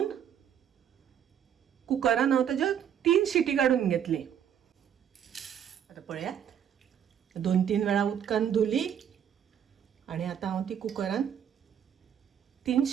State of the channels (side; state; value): left; quieter; 9.0 dB